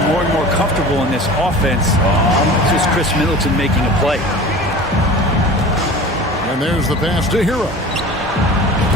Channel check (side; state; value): both; normal; correlation 0.38